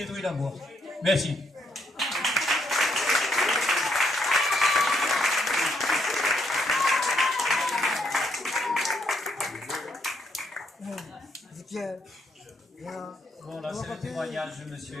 la mouette. Merci. Bon, là c'est le témoignage de M.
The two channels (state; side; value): normal; both; correlation 0.73